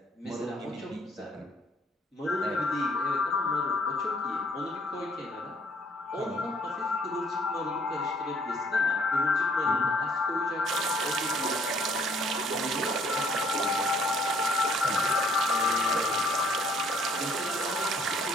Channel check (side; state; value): both; normal; correlation 0.62